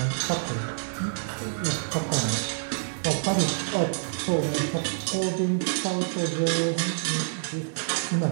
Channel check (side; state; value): left; silent; digital silence